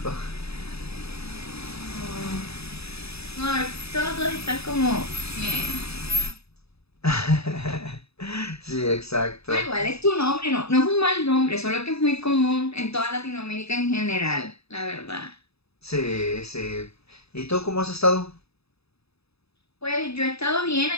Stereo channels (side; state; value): right; late; 0.78 ms